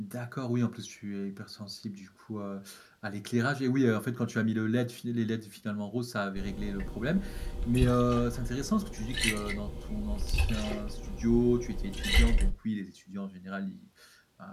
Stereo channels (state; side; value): identical; both; correlation 1.00